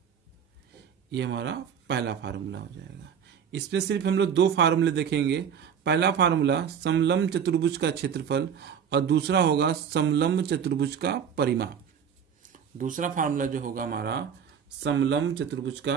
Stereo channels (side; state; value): left; quieter; 7.8 dB